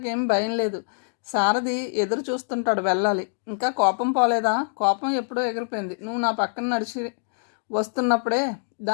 భయం లేదు. సారథి ఎదురు చూస్తుంటాడు, వెళ్ళాలి. ఇంకా కోపం పోలేదా? కోపం ఎప్పుడో ఎగిరిపోయింది. నువ్వు నా పక్కన నడిచి వస్తున్నప్పుడే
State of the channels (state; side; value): silent; right; digital silence